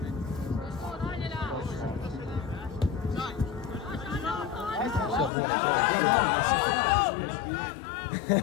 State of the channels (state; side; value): drops out; right; at 5.3 s